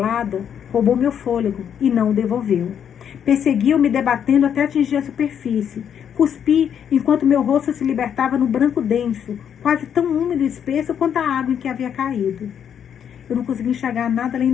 roubou meu fôlego e não o devolveu. Perseguiu-me debatendo até atingir a superfície. Cuspi enquanto meu rosto se libertava no branco denso, quase tão úmido e espesso quanto a água em que havia caído. Eu não conseguia enxergar nada além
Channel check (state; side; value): quieter; right; 8.5 dB